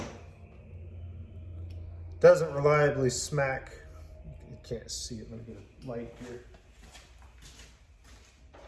doesn't reliably smack. You can't see it, let me get a light here.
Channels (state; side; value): identical; both; correlation 1.00